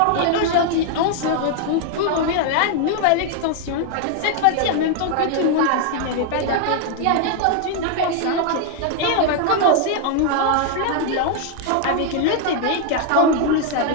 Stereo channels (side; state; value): both; different; correlation 0.00